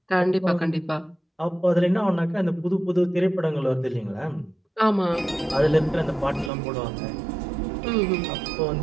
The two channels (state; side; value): drops out; left; at 6.5 s